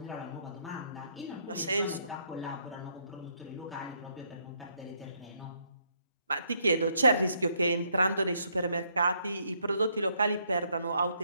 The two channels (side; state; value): both; inverted; correlation -0.72